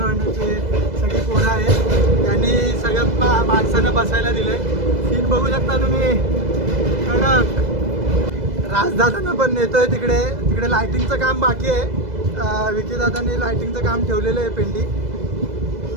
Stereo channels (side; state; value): left; late; 2.0 ms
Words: मंडळाचे सगळी पोरं आहेत. यांनी सगळ्या माणसांना बसायला दिलंय. सीन बघू शकता तुम्ही. कडक. राजदादांना पण नेतोय तिकडे. तिकडे लायटिंगचं काम बाकी आहे. विकी दादांनी लायटिंगचं काम ठेवलेलं आहे पेंडी.